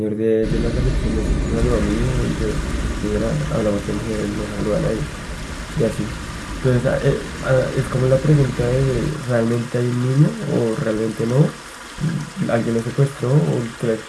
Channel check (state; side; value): identical; both; correlation 1.00